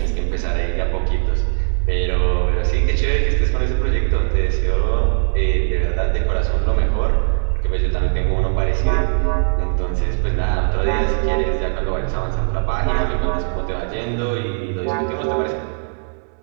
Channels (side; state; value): left; silent; digital silence